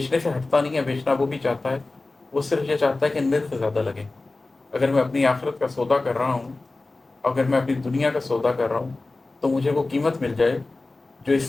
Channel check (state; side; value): quieter; right; 3.2 dB